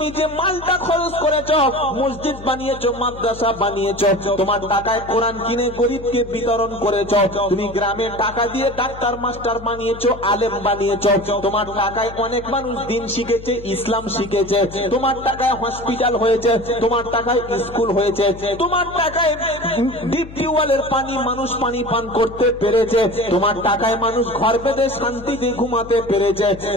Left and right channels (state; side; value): noise; left; hum, 15 dB below the sound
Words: যে মালটা খরচ করেছো, মসজিদ বানিয়েছো, মাদ্রাসা বানিয়েছো, তোমার টাকায় কোরআন কিনে গরিবকে বিতরণ করেছো, তুমি গ্রামে টাকা দিয়ে ডাক্তার মাস্টার বানিয়েছো, আলেম বানিয়েছো, তোমার টাকায় অনেক মানুষ দিন শিখেছে, ইসলাম শিখেছে, তোমার টাকায় হসপিটাল হয়েছে, তোমার টাকায় স্কুল হয়েছে, তোমার টাকায় ডিপ টিউবওয়েলের পানি মানুষ পানি পান করতে পেরেছে, তোমার টাকায় মানুষ ঘর বেঁধে শান্তিতে ঘুমাতে পেরেছে,